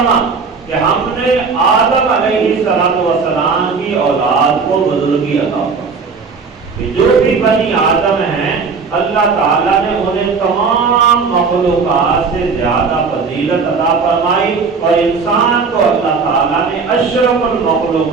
کہ ہم نے آدم علیہ السلام کی اولاد کو بزرگی عطا فرمائی۔ جو بھی بنی آدم ہیں اللہ تعالیٰ نے انہیں تمام مخلوقات سے زیادہ فضیلت عطا فرمائی، اور انسان کو اللہ تعالیٰ نے اشرف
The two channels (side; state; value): left; quieter; 5.0 dB